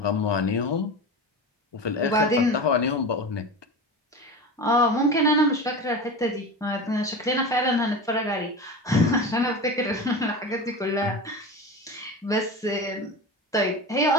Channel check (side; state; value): both; normal; correlation 0.28